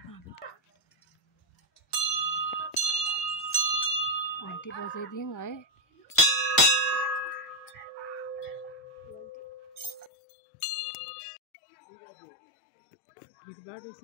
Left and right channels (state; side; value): drops out; right; at 10.1 s